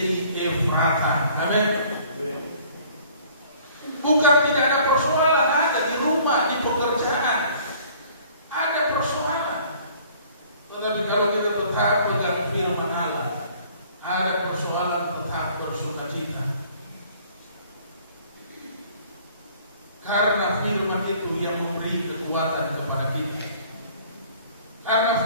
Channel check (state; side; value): inverted; both; correlation -0.54